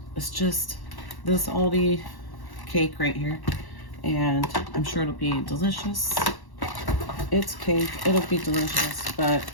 it's just this Aldi cake right here, and I'm sure it'll be delicious. It's cake, it'll be delicious, but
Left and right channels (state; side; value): late; right; 1.1 ms